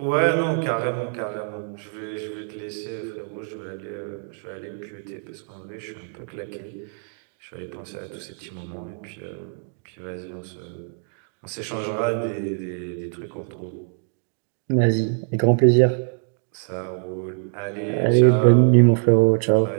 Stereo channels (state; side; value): silent; left; 59 dB below the other